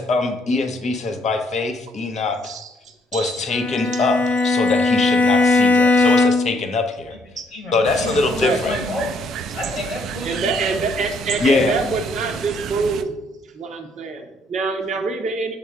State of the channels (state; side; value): normal; both; correlation 0.69